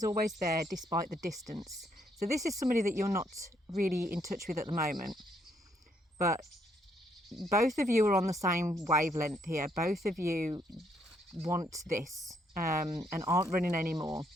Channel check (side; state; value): both; normal; correlation 0.72